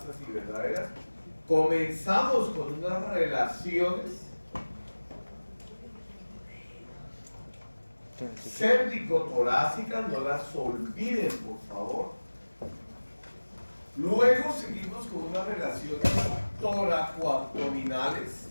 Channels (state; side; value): inverted; both; correlation -1.00